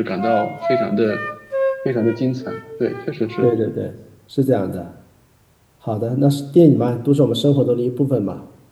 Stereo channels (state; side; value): identical; both; correlation 1.00